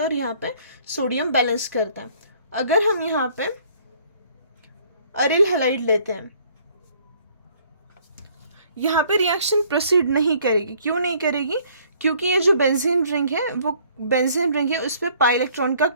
है और यहाँ पे सोडियम बैलेंस करता है। अगर हम यहाँ पे अरिल हैलाइड लेते हैं, यहाँ पे रिएक्शन प्रोसीड नहीं करेगी। क्यों नहीं करेगी, क्योंकि ये जो बेंजीन रिंग है वो बेंजीन रिंग है, उस पर पाई इलेक्ट्रॉन का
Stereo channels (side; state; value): both; inverted; correlation -0.60